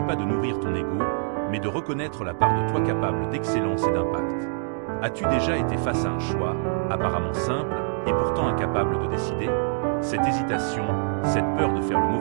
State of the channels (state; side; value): silent; left; 62 dB below the other